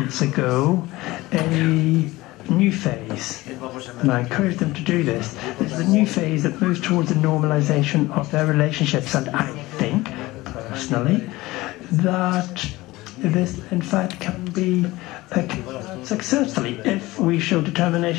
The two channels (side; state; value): right; quieter; 19.5 dB